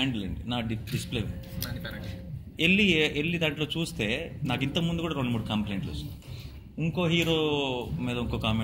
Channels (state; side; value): identical; both; correlation 1.00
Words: అండి, నా డిస్ప్లే వెళ్ళి దాంట్లో చూస్తే నాకు ఇంతకుముందు కూడా 2-3 కంప్లైంట్లు వచ్చినాయి. ఇంకో హీరో మీద ఇంకో